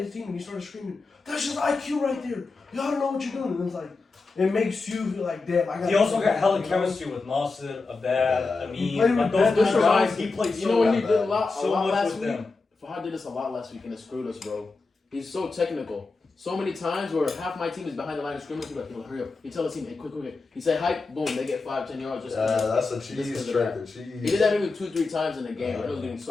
team and he started screaming, "That's just IQ right there. Y'all don't know what you're doing." And it's like, it makes you feel like, damn, I got. He also got hella chemistry with Nasser, Abad, Yeah. He played Amin. Like with those Ben. good guys, he played You so know what he bad. did a lot so much last with week? them. Fahad did this a lot last week and it screwed us, bro. He's so technical. so many times where half my team is behind the line of scrimmage. You're like, yo, hurry up. You tell the team, hey, quick. He said, hype, boom, they get 5-10 yards. Just Yeah, that's a just cheese 'cause of trick. that. The cheese. He did that maybe 2-3 times in the game. And it was getting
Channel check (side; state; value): right; quieter; 3.9 dB